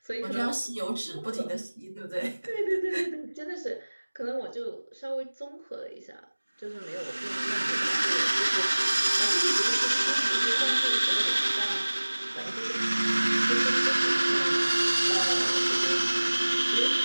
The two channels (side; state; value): both; inverted; correlation -1.00